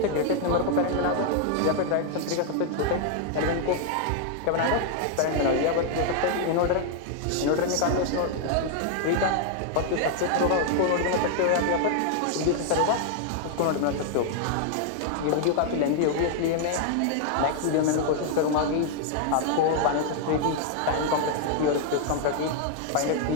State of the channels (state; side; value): different; both; correlation 0.00